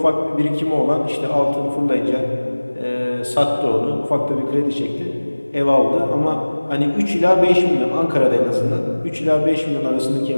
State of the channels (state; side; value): inverted; both; correlation -1.00